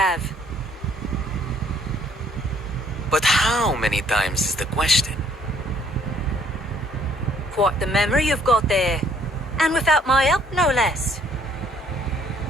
But how many times is the question? Quite the memory you've got there. And without my help, no less.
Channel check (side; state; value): both; normal; correlation 0.63